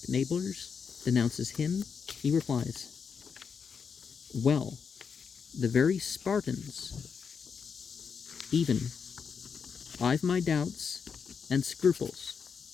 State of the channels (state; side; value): quieter; right; 6.3 dB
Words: neighbors denounces him, he replies, "Well, the very Spartans, even I've my doubts and scruples